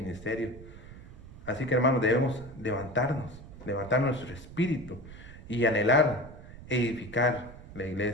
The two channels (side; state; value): right; noise; rumble, 16 dB below the sound